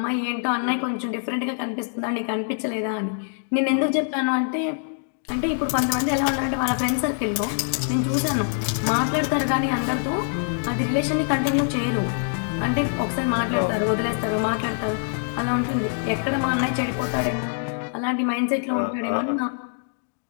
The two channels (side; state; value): right; silent; digital silence